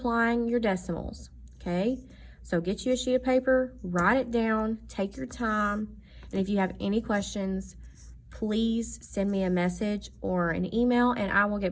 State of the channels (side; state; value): both; identical; correlation 1.00